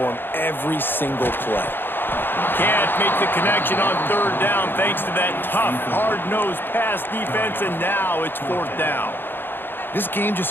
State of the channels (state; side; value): late; right; 0.10 ms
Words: him every single play. Can't make the connection on 3rd down thanks to that tough, hard-nosed pass defense, and now it's 4th down. This game